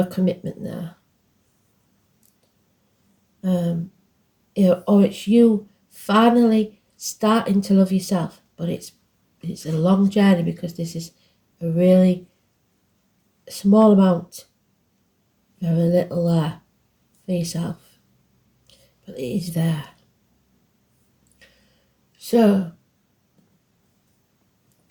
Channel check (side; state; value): both; identical; correlation 1.00